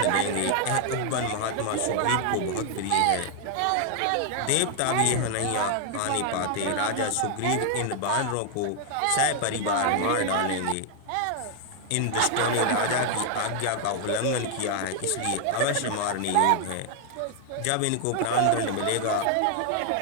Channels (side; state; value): both; different; correlation 0.00